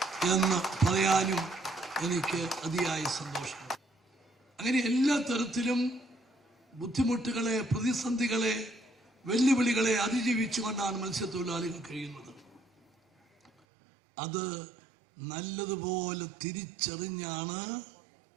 എന്ന് പറയാനും എനിക്ക് അതിയായ സന്തോഷമുണ്ട്. അങ്ങനെ എല്ലാ തരത്തിലും ബുദ്ധിമുട്ടുകളെ, പ്രതിസന്ധികളെ, വെല്ലുവിളികളെ അതിജീവിച്ചുകൊണ്ടാണ് മത്സ്യത്തൊഴിലാളികൾ കഴിയുന്നത്. അത് നല്ലതുപോലെ തിരിച്ചറിഞ്ഞാണ്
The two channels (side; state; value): left; drops out; at 13.5 s